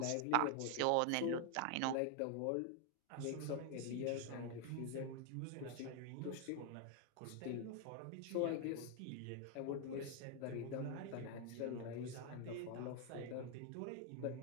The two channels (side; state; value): both; different; correlation 0.00